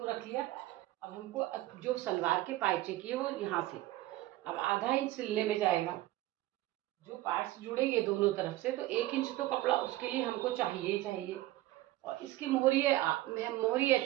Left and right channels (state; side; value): quieter; left; 16.6 dB